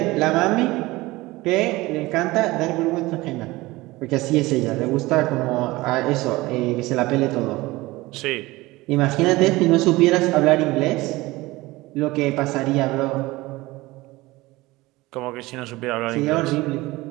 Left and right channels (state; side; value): quieter; left; 20.2 dB